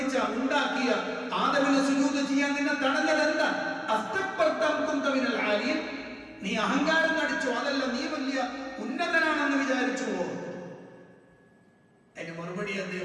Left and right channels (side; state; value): both; identical; correlation 1.00